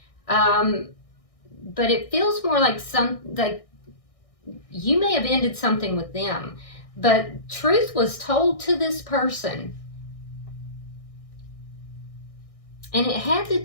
but it feels more like you may have ended something with them, but truth was told to this person. And it had to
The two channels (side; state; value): right; late; 1.6 ms